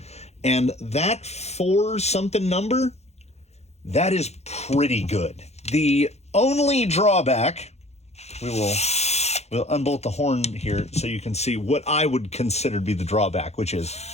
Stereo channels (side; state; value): right; late; 0.31 ms